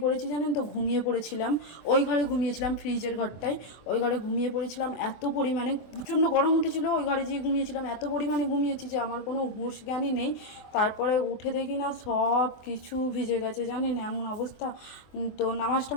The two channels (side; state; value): right; late; 24 ms